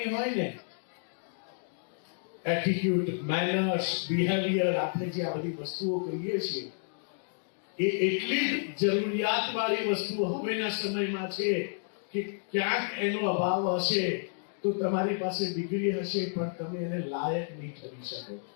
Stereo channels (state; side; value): silent; right; digital silence